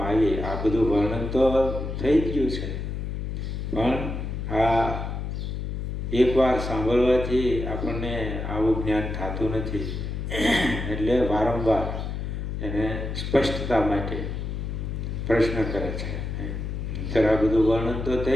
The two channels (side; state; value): left; noise; hum, 4 dB below the sound